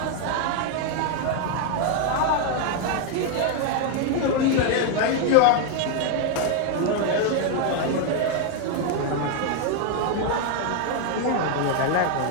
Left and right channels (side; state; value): both; different; correlation 0.01